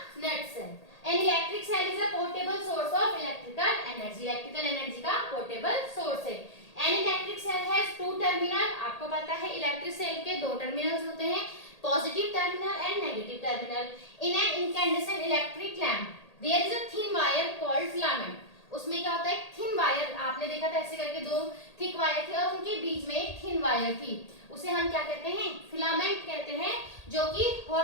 nutshell. An electric cell is a portable source of electrical energy. Electrical energy का पोर्टेबल सोर्स है। An electric cell has two terminal. आपको पता है इलेक्ट्रिक सेल के दो टर्मिनल्स होते हैं, positive terminal and negative terminal. In an incandescent electric lamp, there is a thin wire called filament. उसमें क्या होता है, थिन वायर, आपने देखा था ऐसे करके दो थिक वायर थे और उनके बीच में एक थिन वायर थी, उसे हम क्या कहते हैं, फिलामेंट कहते हैं। जो कि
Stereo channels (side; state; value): right; late; 1.8 ms